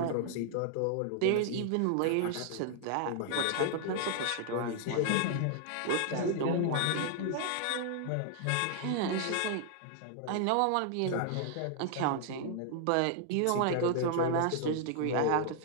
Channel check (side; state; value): both; different; correlation 0.00